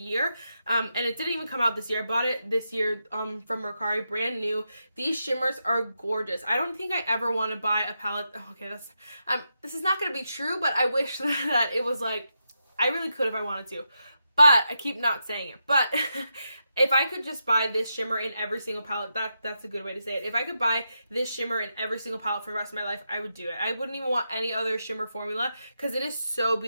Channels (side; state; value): both; inverted; correlation -0.86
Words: And it didn't even come out this year. I bought it this year from Mercari, brand new. These shimmers are gorgeous. I don't think I ever want to buy a palette. Oh, okay, this is not going to be true, but I wish that it was like, I really could if I wanted to. But I keep not saying it. But if I could just buy this shimmer in every single palette, that's a good way to say it. If I could buy this shimmer in every single palette for the rest of my life, I would do it. I wouldn't even want any other shimmer formula because it is so